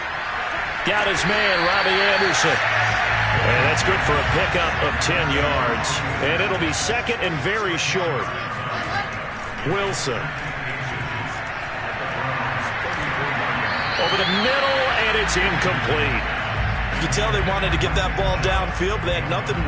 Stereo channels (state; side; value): identical; both; correlation 1.00